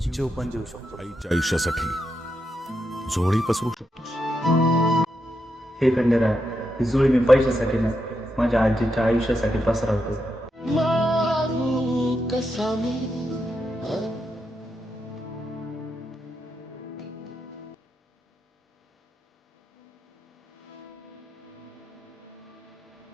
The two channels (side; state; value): both; normal; correlation 0.84